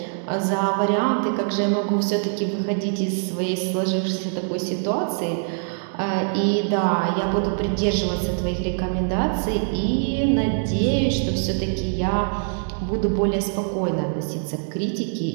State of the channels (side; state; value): left; silent; digital silence